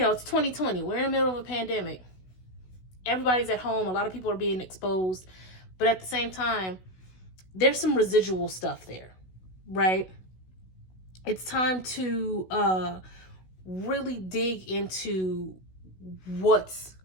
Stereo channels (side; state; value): right; late; 16 ms